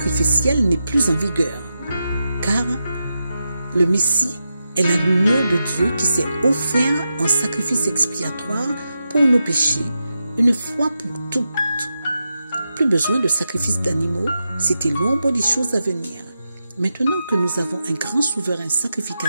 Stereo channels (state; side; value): inverted; both; correlation -0.88